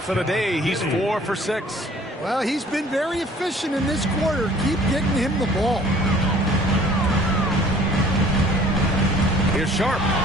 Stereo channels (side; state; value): both; normal; correlation 0.53